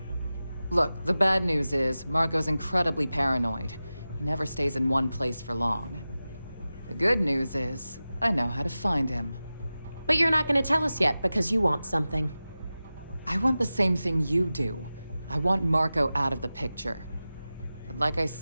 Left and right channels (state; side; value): inverted; both; correlation -0.95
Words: Look, the bad news is, Marco's incredibly paranoid. He never stays in one place for long. The good news is, I know how to find him. But you're not gonna tell us yet because you want something. I want the same thing you do. I want Marco out of the picture. But like I